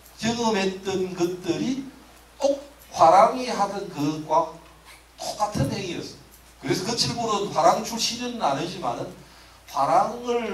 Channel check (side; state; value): both; identical; correlation 1.00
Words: 경험했던 것들이 꼭 화랑이 하던 것과 똑같은 행위였어요. 그래서 그 칠부는 화랑 출신은 아니지만은